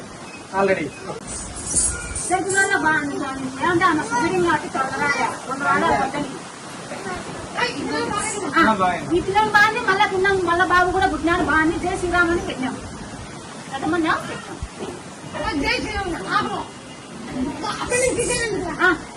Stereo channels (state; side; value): identical; both; correlation 1.00